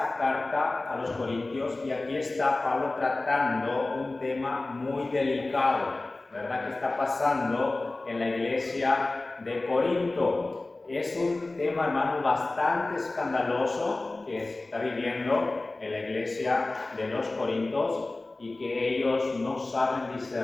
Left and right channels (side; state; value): right; quieter; 3.1 dB